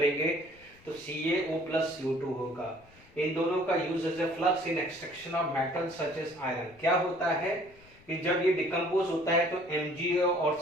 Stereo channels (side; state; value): left; noise; rumble, 26 dB below the sound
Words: तो CaO + CO2 होगा। इन दोनों का use as a flux in extraction of metal such as iron. क्या होता है कि जब ये डिकम्पोज होता है तो MgO और